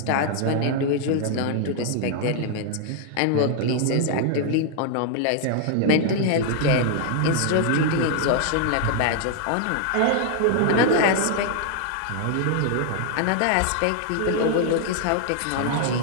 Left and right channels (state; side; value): different; both; correlation 0.00